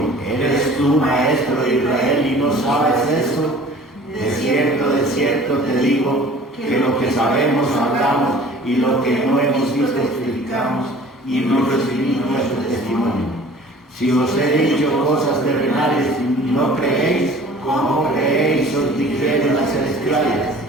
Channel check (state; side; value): normal; both; correlation 0.47